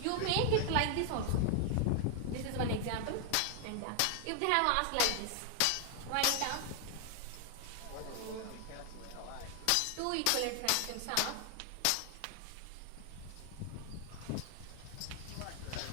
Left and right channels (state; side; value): different; both; correlation 0.00